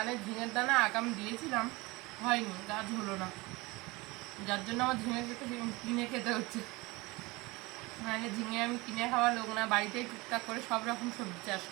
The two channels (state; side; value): quieter; left; 23.3 dB